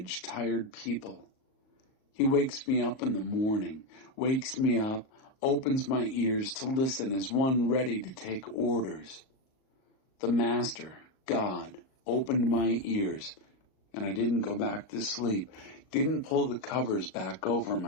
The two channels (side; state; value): right; late; 38 ms